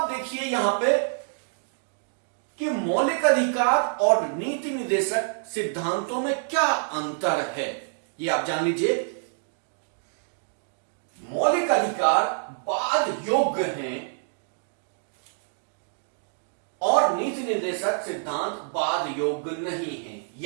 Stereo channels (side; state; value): left; silent; digital silence